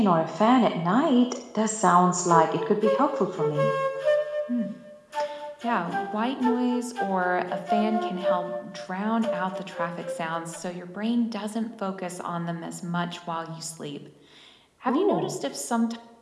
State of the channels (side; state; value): both; identical; correlation 1.00